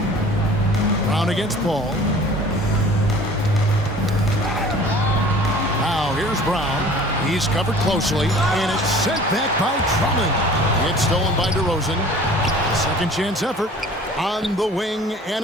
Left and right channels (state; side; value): normal; both; correlation 0.47